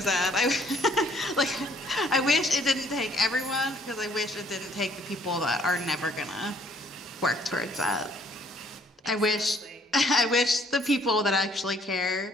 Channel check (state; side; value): normal; both; correlation 0.62